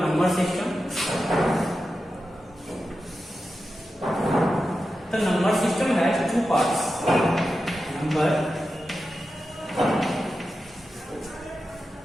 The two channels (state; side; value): normal; both; correlation 0.91